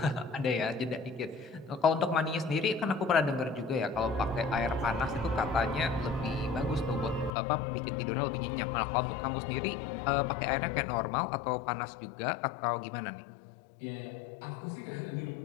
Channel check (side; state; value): right; drops out; at 7.3 s